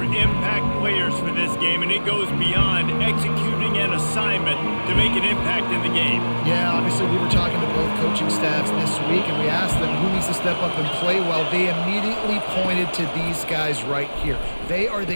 impact players for this game, and it goes beyond executing an assignment to make an impact in the game. Yeah, obviously we were talking to both coaching staffs this week, and we asked them who needs to step up and play well. They immediately pointed to these guys right here. They are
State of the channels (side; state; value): both; inverted; correlation -1.00